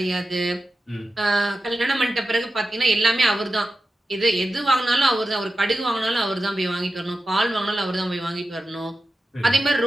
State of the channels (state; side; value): normal; both; correlation 0.92